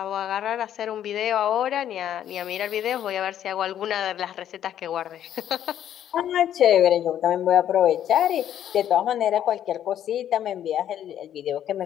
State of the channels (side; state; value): right; quieter; 10.6 dB